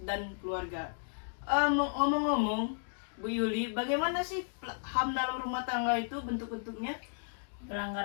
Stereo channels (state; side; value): silent; right; digital silence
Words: dan keluarga. Ngomong-ngomong, Bu Yuli, bagaimana sih HAM dalam rumah tangga itu bentuk-bentuknya?